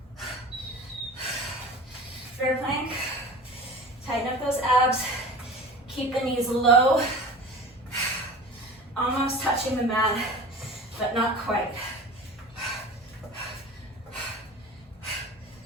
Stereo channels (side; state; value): both; normal; correlation 0.37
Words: Bear plank. Tighten up those abs. Keep the knees low. Almost touching the mat, but not quite.